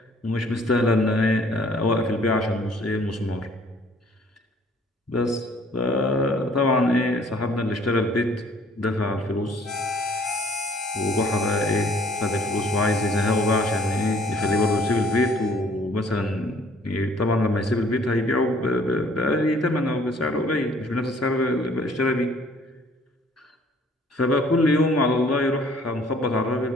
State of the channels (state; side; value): normal; both; correlation 0.58